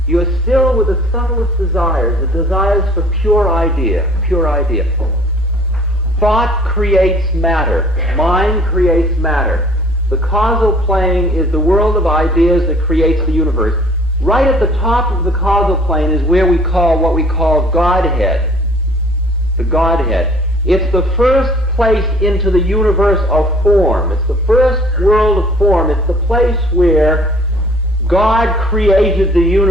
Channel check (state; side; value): normal; both; correlation 0.54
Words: you are still with the subtlest desires, the desires for pure idea, pure idea. Thought creates matter. Mind creates matter. The causal plane is the world of ideas that creates the universe. Right at the top of the causal plane is where we call what we call Godhead. The Godhead. It's the first place into the universe of form. It's the first world of form. It's the place where God created the